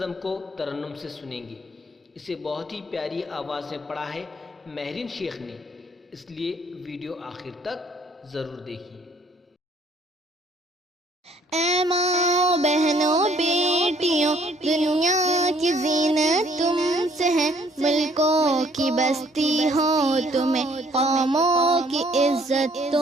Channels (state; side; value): normal; both; correlation 0.62